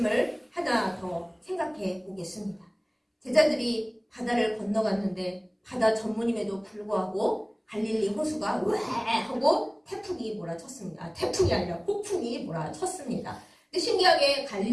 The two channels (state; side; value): identical; both; correlation 1.00